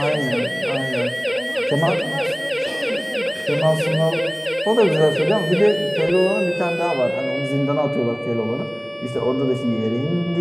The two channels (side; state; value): both; identical; correlation 1.00